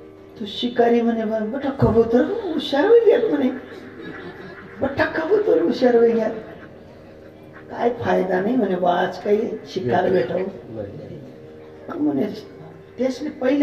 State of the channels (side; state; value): both; identical; correlation 1.00